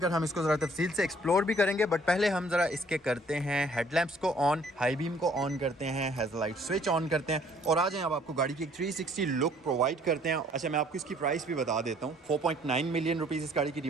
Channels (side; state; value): both; normal; correlation 0.60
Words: हम इसको ज़रा तफसील से एक्सप्लोर भी करेंगे। बट पहले हम ज़रा इसके करते हैं हेडलैम्प्स को ऑन, हाई बीम को ऑन करते हैं, हेडलाइट स्विच ऑन करते हैं और आ जाएं अब आपको गाड़ी की एक 360 लुक प्रोवाइड करते हैं। अच्छा मैं आपको इसकी प्राइस भी बता देता हूँ। 4.9 मिलियन रुपीज़ इस गाड़ी की